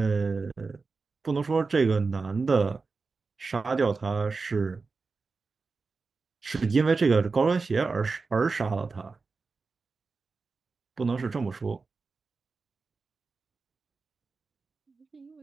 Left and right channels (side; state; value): left; quieter; 4.3 dB